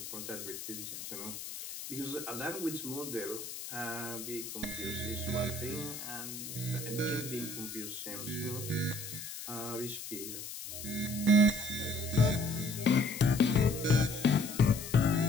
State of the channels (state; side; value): noise; left; hiss, 9 dB below the sound